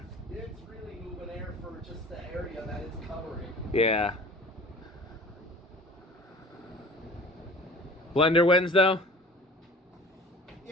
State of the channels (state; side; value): normal; both; correlation 0.44